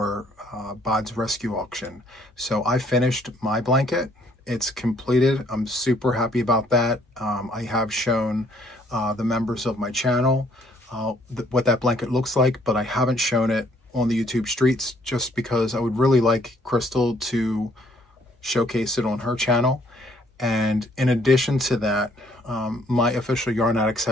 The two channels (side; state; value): both; normal; correlation 0.65